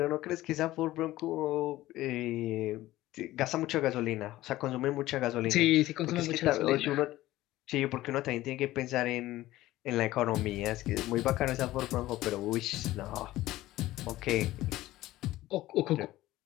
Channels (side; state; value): right; quieter; 16.2 dB